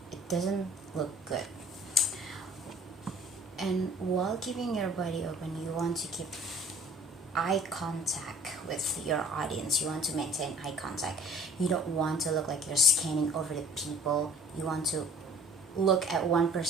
it doesn't look good. And while keeping your body open, you want to keep eye contact with your audience. You want to maintain eye contact. You don't want to look like you're scanning over the people. You want to look at one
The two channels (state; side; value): normal; both; correlation 0.50